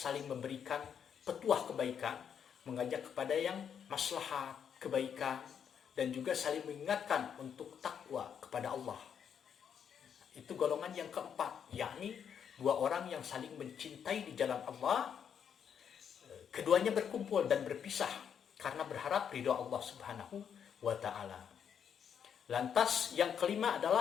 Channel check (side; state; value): right; quieter; 7.9 dB